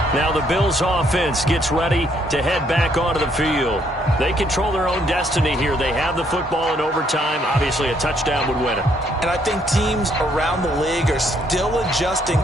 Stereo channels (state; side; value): normal; both; correlation 0.69